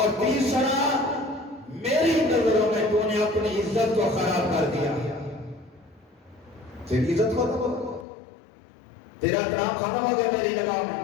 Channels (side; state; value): right; drops out; at 8.1 s